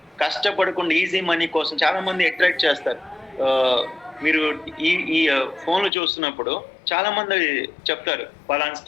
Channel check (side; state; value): right; drops out; at 5.9 s